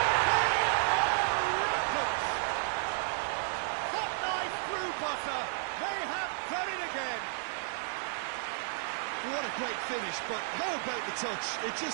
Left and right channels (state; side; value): silent; left; digital silence